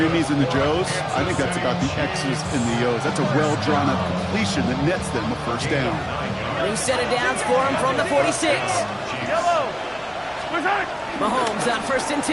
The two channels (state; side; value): identical; both; correlation 1.00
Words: and the Joes. I think that's about the X's and the O's. That's a well-drawn-up completion that nets them a first down. New set of downs for him from the 46. Mahomes on first and